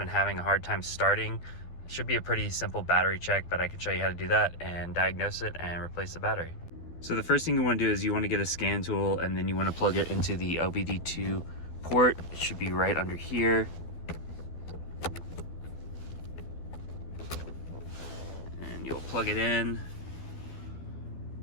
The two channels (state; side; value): late; right; 12 ms